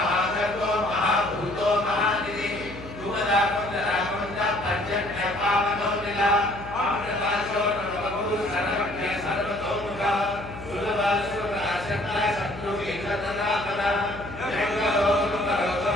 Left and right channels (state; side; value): noise; left; hum, 14 dB below the sound